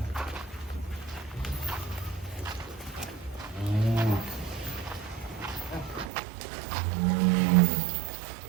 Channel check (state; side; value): drops out; left; at 6.1 s